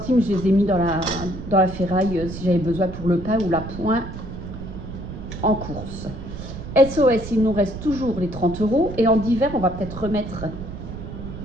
je les ai mis dans la ferraille si j'avais besoin pour le pain ou la pointe en course. SOS, il nous reste toujours les 30 € et en divers on va peut-être remettre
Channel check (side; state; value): right; noise; rumble, 10 dB below the sound